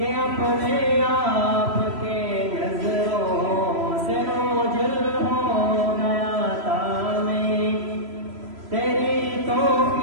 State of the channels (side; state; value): left; late; 3.0 ms